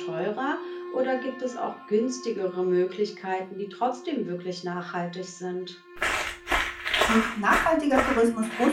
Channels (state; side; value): identical; both; correlation 1.00